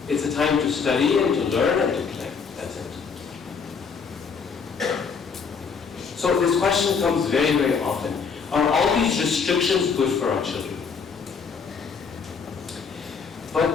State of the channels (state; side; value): quieter; right; 5.7 dB